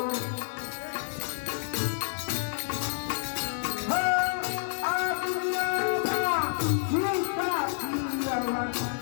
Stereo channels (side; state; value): right; silent; digital silence